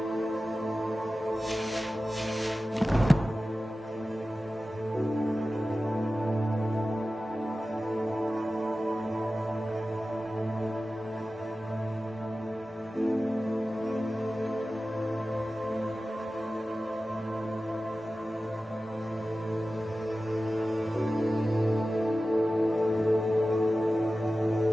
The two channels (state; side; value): normal; both; correlation 0.95